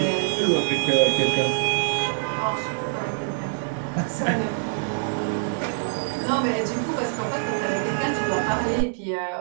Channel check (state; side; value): silent; left; digital silence